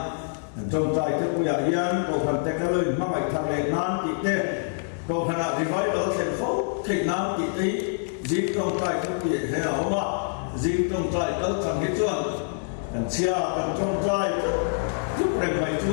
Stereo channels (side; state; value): right; silent; digital silence